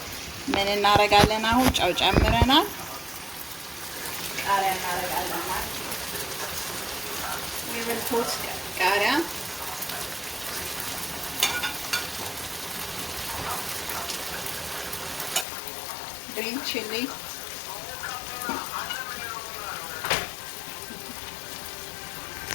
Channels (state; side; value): drops out; right; at 15.5 s